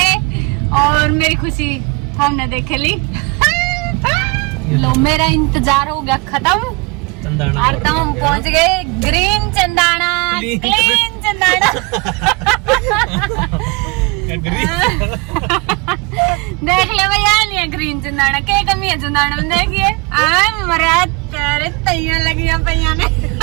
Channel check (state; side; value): quieter; left; 27.1 dB